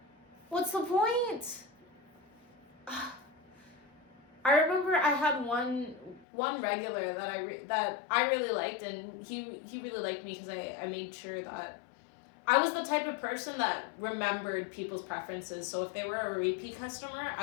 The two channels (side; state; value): right; drops out; at 6.2 s